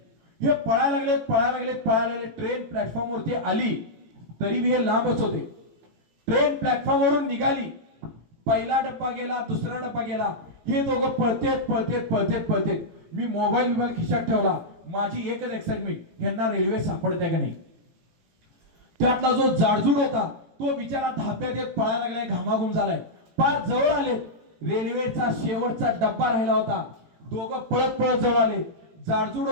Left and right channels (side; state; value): left; late; 18 ms